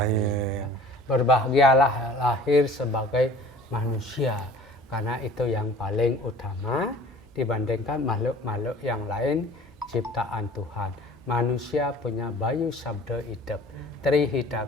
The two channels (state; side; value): normal; both; correlation 0.47